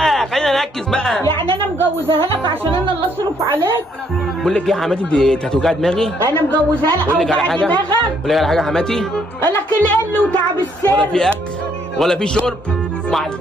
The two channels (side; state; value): both; normal; correlation 0.69